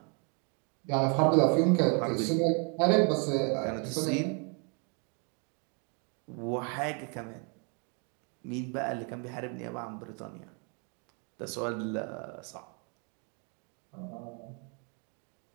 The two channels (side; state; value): left; quieter; 36.8 dB